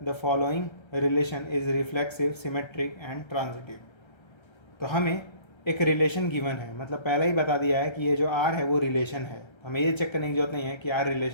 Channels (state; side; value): late; right; 1.3 ms